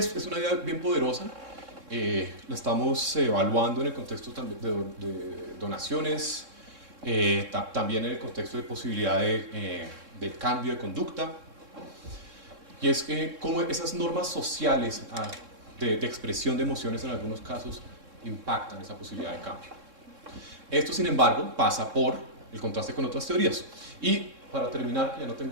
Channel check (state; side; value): late; left; 3.6 ms